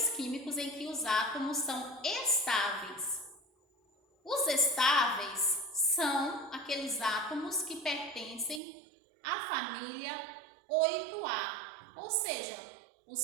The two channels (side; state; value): left; drops out; at 8.6 s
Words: químicos em que os átomos são estáveis. Os estáveis são aqueles átomos que pertencem à família 8A, ou seja,